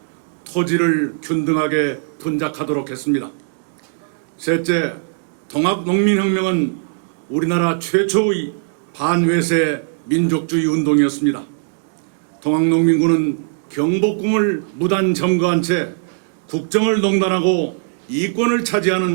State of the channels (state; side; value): silent; left; digital silence